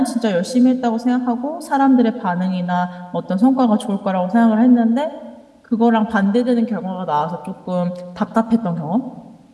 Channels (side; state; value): both; identical; correlation 1.00